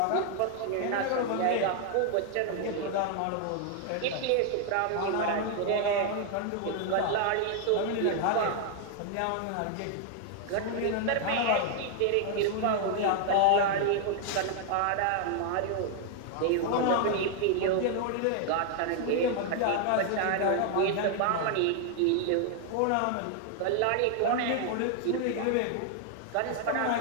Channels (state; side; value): different; both; correlation 0.00